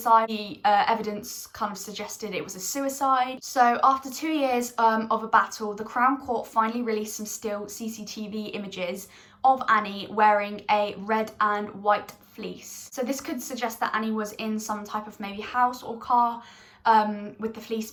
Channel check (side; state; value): both; identical; correlation 1.00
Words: The evidence kind of suggested it was a suicide. So after 2 years of a battle, the Crown Court finally released some still CCTV images of Annie wearing a red and white fleece. So this could suggest that Annie was in some type of maybe house or car with the fleece